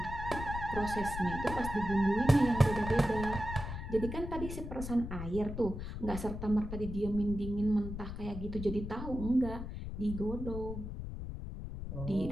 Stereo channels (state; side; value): noise; left; rumble, 7 dB below the sound